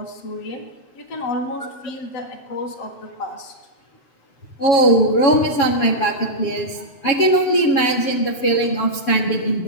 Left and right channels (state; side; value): late; right; 7.2 ms